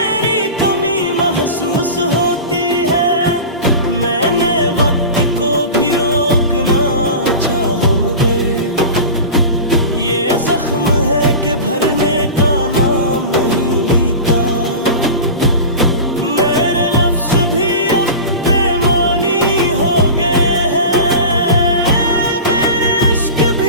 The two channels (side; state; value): both; inverted; correlation -0.30